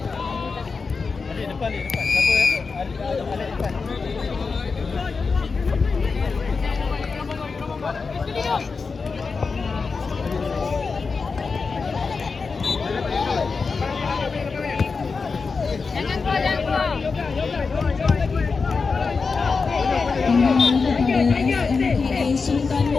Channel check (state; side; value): quieter; right; 4.7 dB